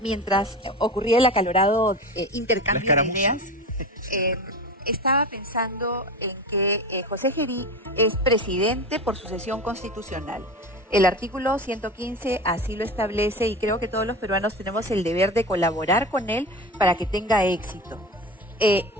ocurría el acalorado intercambio de ideas, estaba pensando en que José Gerí es presidente por sucesión constitucional. El artículo 115 así lo establece y creo que todos los peruanos tenemos el deber de colaborar con él para que tenga éxito.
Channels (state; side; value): normal; both; correlation 0.28